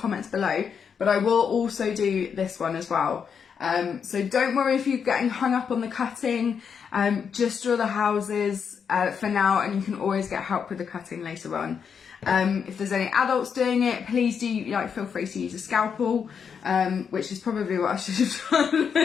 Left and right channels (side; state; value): right; quieter; 6.8 dB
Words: below, but I will also do this one as well. So don't worry if you're getting hung up on the cutting, just draw the houses for now, and you can always get help with the cutting later on. If there's any adults doing it, please do feel free to use a scalpel, which is probably what I should have